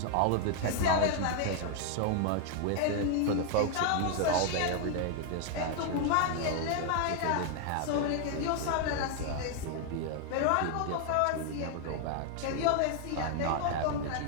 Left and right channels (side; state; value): both; different; correlation 0.00